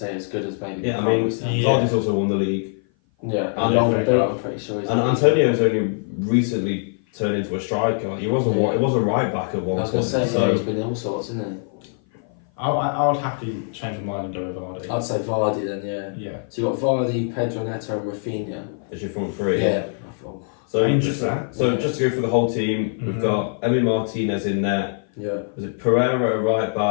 as good as maybe. Yeah, I mean, Vardy's also won the league. Yeah, I'm pretty sure. And Antonio's only recently turned into a striker. Like, he was a right back at one point. I was going to say, he's been all sorts, isn't he? I would happily change my mind and go with Vardy. I'd say Vardy then, yeah. So you got Vardy, Pedro Neto, and Rafinha. As your front three. Yeah. So just to go through the whole team, we've got Emi Martinez in net. Yeah. Was it Pereira at right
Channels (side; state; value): right; silent; 56 dB below the other